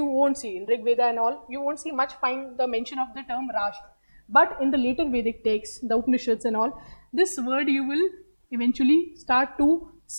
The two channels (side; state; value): both; inverted; correlation -1.00